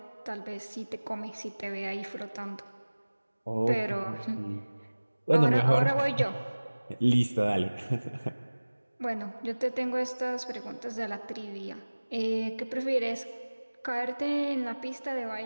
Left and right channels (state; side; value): inverted; both; correlation -1.00